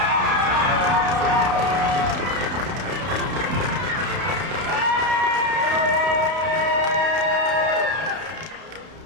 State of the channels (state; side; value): late; left; 32 ms